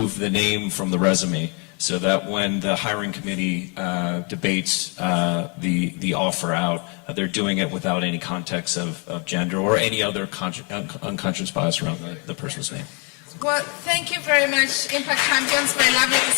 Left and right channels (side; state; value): right; quieter; 34.5 dB